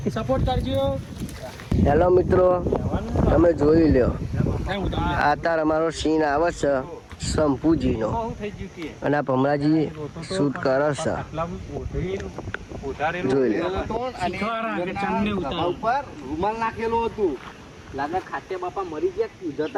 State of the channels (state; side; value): identical; both; correlation 1.00